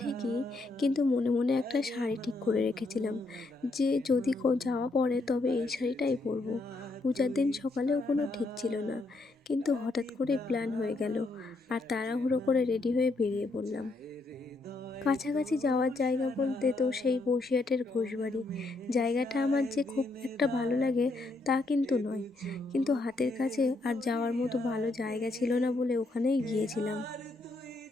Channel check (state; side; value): quieter; right; 3.2 dB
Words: কিন্তু মনে মনে একটা শাড়ি ঠিক করে রেখেছিলাম যে যদি যাওয়া পড়ে তবে এই শাড়িটাই পরবো। পূজার দিন সকালেও কোনো ঠিক ছিল না, কিন্তু হঠাৎ করে প্ল্যান হয়ে গেল আর তাড়াহুড়ো করে রেডি হয়ে বেরিয়ে পড়লাম। কাছাকাছি যাওয়ার জায়গা বলতে তো সেই বসিরহাটের ঘোষবাড়ি। জায়গাটা আমার যে খুব একটা ভালো লাগে তা কিন্তু নয়। কিন্তু হাতের কাছে আর যাওয়ার মতো ভালো জায়গা ছিল না বলে ওখানেই গিয়েছিলাম।